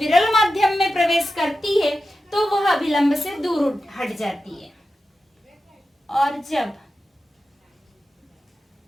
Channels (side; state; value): both; normal; correlation 0.91